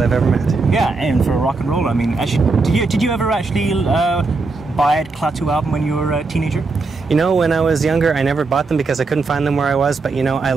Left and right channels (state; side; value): quieter; left; 3.9 dB